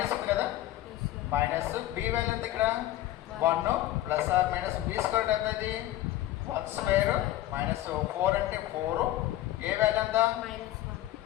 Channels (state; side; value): quieter; right; 14.6 dB